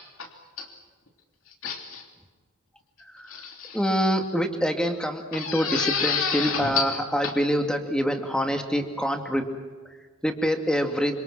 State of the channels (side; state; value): both; normal; correlation 0.70